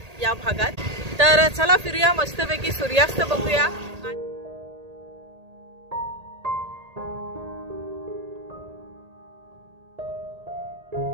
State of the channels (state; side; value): late; left; 1.8 ms